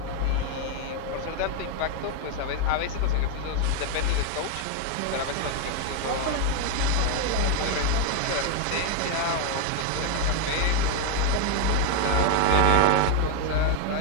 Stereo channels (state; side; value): different; both; correlation 0.01